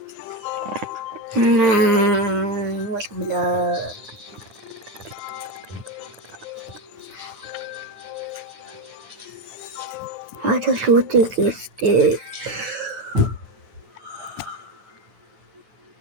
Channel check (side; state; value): left; late; 9.8 ms